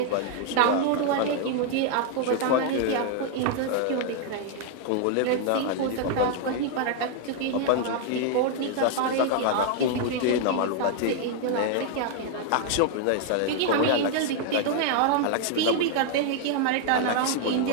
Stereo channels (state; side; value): different; both; correlation 0.00